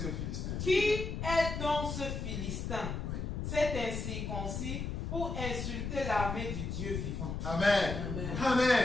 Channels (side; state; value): left; noise; rumble, 4 dB below the sound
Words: Philistin? Qui est donc ce Philistin? Oui. C'est incirconcis pour insulter l'armée du Dieu vivant. Amen.